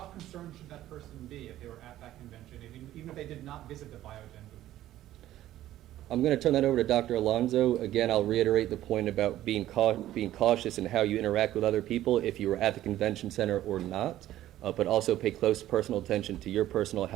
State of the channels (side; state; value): left; quieter; 13.7 dB